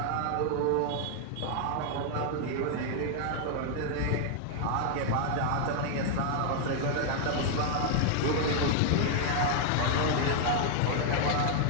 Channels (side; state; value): both; different; correlation 0.00